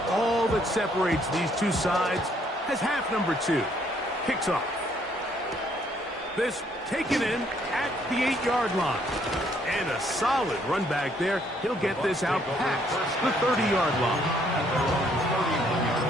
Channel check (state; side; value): normal; both; correlation 0.67